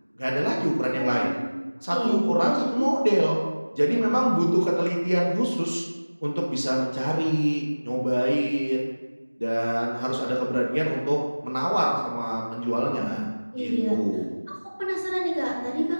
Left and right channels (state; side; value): inverted; both; correlation -1.00